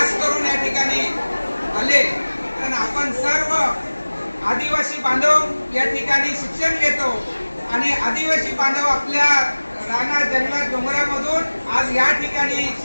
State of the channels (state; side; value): inverted; both; correlation -1.00